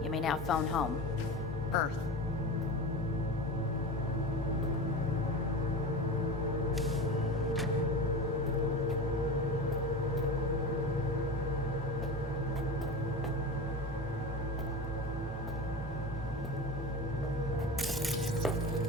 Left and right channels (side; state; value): both; normal; correlation 0.28